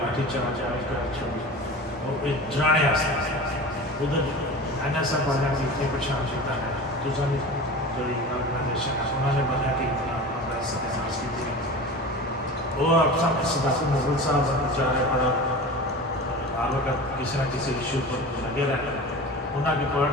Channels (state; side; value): normal; both; correlation 0.34